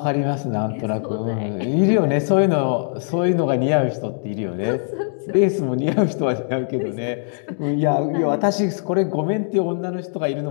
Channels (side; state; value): right; silent; digital silence